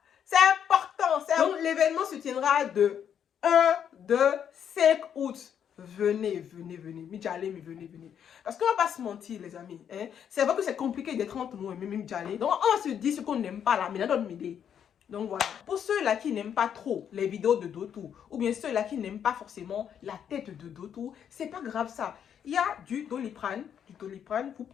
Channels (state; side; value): quieter; right; 8.6 dB